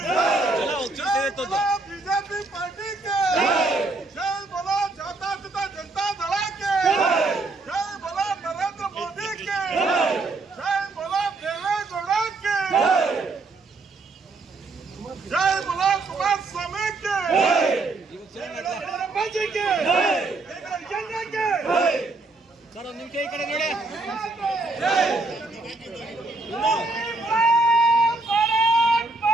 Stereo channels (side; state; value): left; quieter; 3.4 dB